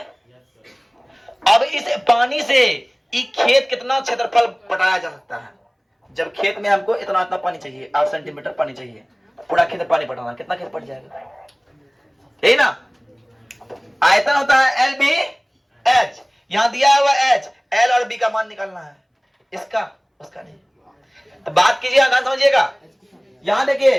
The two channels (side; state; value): both; identical; correlation 1.00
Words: अब इस पानी से खेत कितना क्षेत्रफल पटाया जा सकता है? जब खेत में हमको इतना इतना पानी चाहिए, 8 सेंटीमीटर पानी चाहिए, पूरा खेत में पानी पटाना, कितना खेत पट जाएगा? यही ना आयतन होता है एल बी एच। यहां दिया हुआ एच, एल और बी का मान निकालना है, इसका उसका नहीं। तो बात कीजिए, ध्यान समझिएगा। यहां